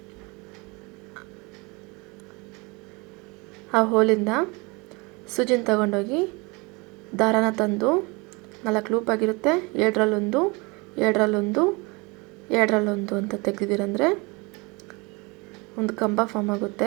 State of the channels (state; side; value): quieter; left; 27.3 dB